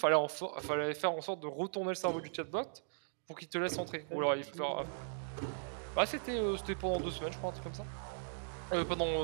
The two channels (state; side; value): silent; left; digital silence